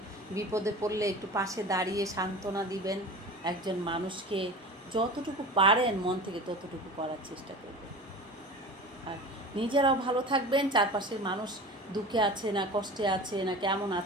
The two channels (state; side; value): normal; both; correlation 0.35